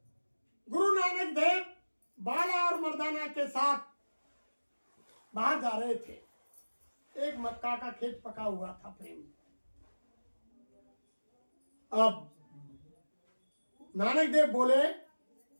गुरु नानक देव बाला और मर्दाना के साथ बाहर जा रहे थे। एक मक्का का खेत पका हुआ था प्रेम। अब नानक देव बोले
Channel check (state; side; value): inverted; both; correlation -1.00